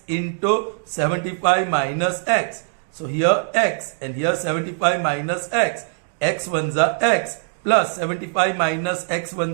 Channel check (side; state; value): left; silent; digital silence